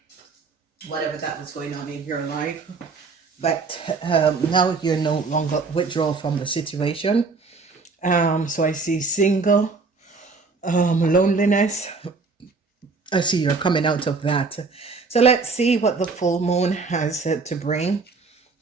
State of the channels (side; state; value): left; quieter; 4.4 dB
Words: whatever that was going on in your life. But now you're no longer withdraw from the situation. So I see single, loneliness. I see you're coming out of that. So let's see what the full moon has to bring.